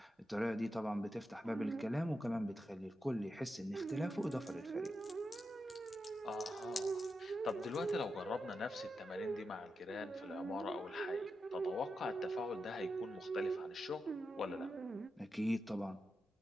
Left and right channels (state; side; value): normal; both; correlation 0.88